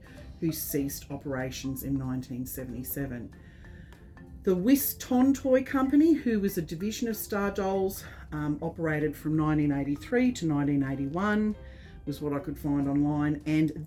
who ceased operations in 1977. The Whiston Toy Company, who was a division of Star Dolls, operated from 1983 to 1981, was what I could find online. And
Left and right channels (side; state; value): both; identical; correlation 1.00